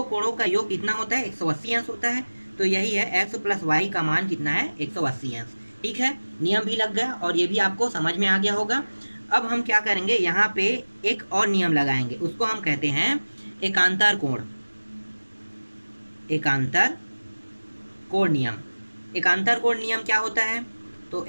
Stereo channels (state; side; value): inverted; both; correlation -1.00